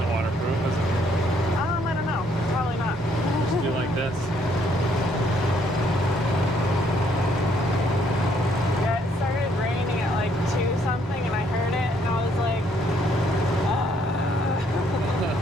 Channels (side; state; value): both; normal; correlation 0.68